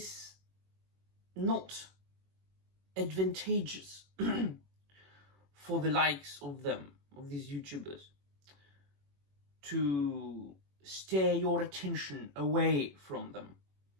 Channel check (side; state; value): left; late; 21 ms